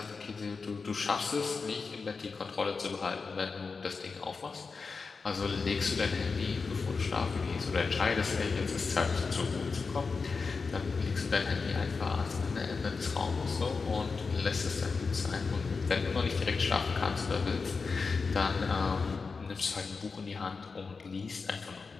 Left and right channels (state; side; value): quieter; right; 4.7 dB